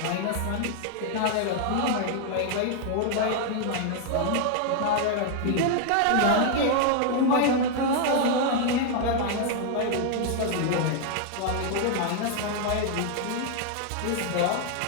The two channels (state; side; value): different; both; correlation 0.00